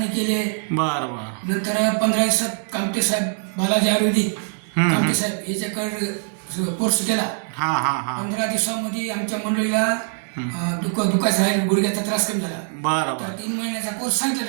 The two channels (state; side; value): silent; left; digital silence